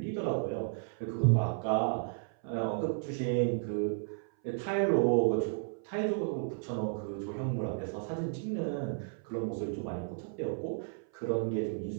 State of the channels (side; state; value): left; silent; 56 dB below the other